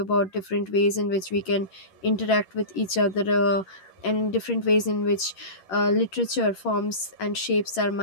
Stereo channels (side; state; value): right; late; 11 ms